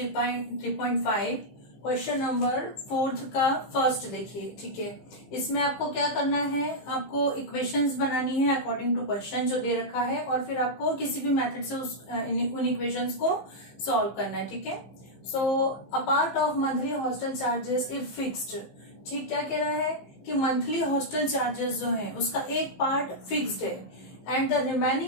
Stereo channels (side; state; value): right; late; 15 ms